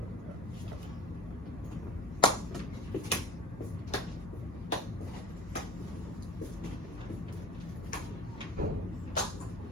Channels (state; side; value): normal; both; correlation 0.36